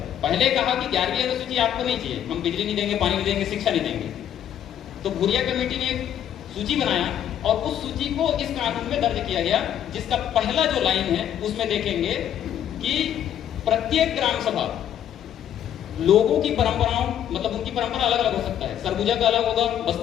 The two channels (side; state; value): right; quieter; 10.2 dB